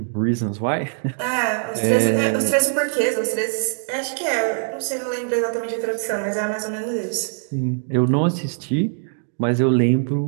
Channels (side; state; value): left; silent; digital silence